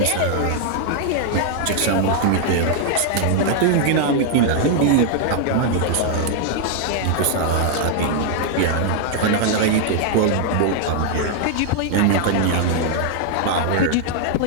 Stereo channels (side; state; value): both; different; correlation 0.00